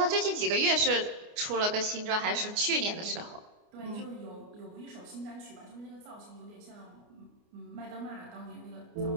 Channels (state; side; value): late; left; 29 ms